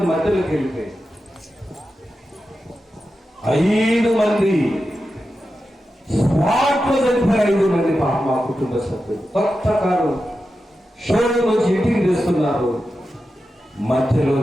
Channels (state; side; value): normal; both; correlation 0.91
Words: మధ్యలోకి వెళ్ళిపోయి 5 మంది స్పాట్ లో చనిపోయి 5 మంది మా కుటుంబ సభ్యులు. కొత్త కారు షోరూమ్ నుంచి ఇంటికి తెస్తున్నారు,